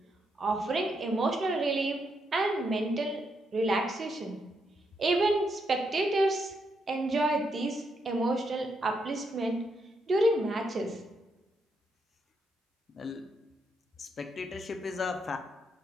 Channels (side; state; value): both; normal; correlation 0.79